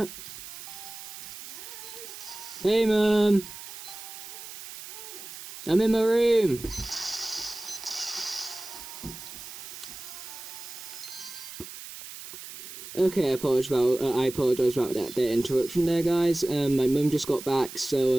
Hey, Mum! I'm in my room! Okay, I apologise about that interruption there, guys. My mum just got back,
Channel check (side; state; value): right; noise; hiss, 12 dB below the sound